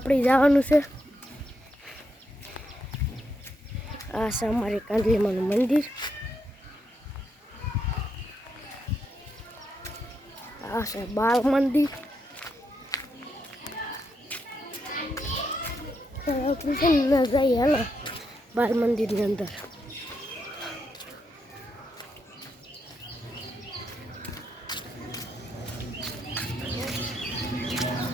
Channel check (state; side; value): normal; both; correlation 0.81